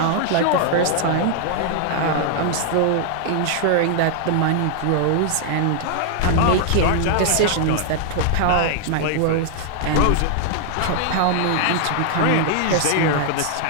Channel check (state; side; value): different; both; correlation 0.00